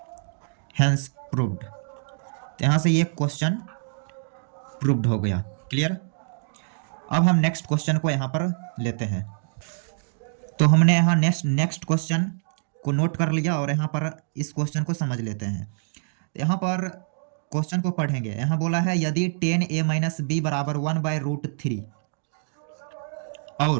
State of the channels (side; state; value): left; silent; digital silence